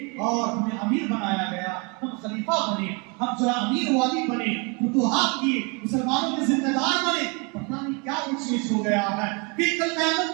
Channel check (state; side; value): quieter; left; 31.9 dB